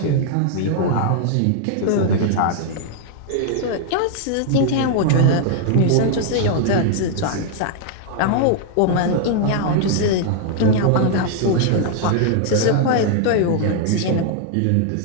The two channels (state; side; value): different; both; correlation 0.00